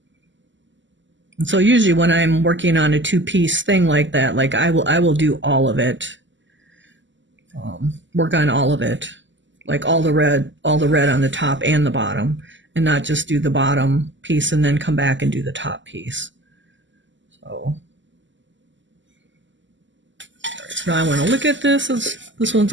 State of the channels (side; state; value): left; late; 0.54 ms